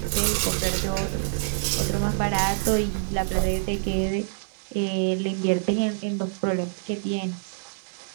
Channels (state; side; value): silent; left; digital silence